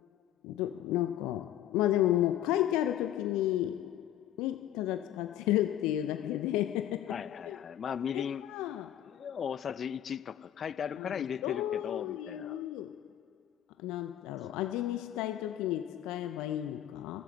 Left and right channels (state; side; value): quieter; right; 11.8 dB